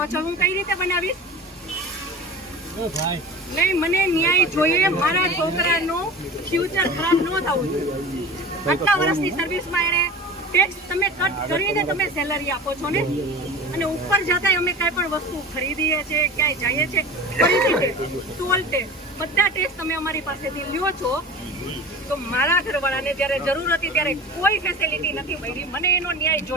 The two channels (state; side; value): normal; both; correlation 0.35